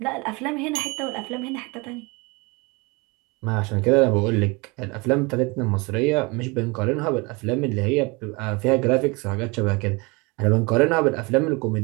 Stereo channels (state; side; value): quieter; left; 26.9 dB